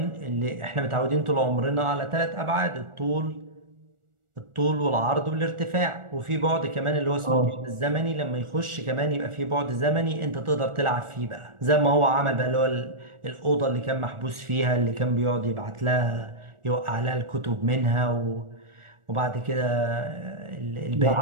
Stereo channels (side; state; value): left; late; 1.4 ms